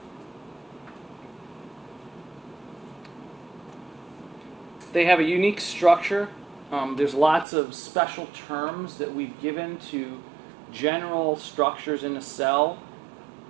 They have a unique structure. There's lots of special terms that we've given to general structures in a cell.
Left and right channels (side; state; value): left; drops out; at 7.5 s